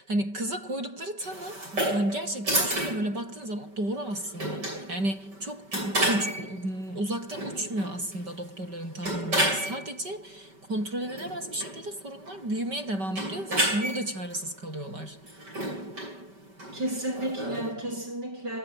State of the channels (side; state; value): left; late; 5.2 ms